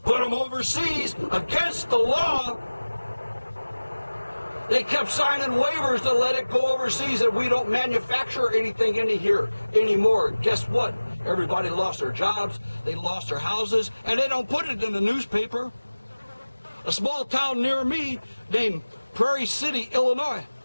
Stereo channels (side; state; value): both; inverted; correlation -1.00